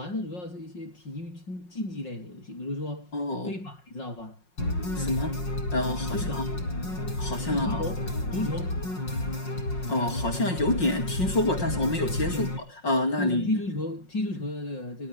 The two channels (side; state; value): right; late; 5.5 ms